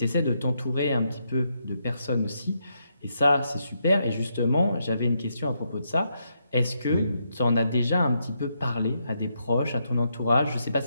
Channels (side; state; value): both; inverted; correlation -0.80